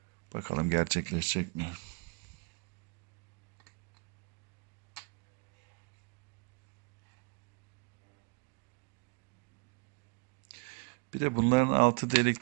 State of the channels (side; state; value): left; quieter; 32.2 dB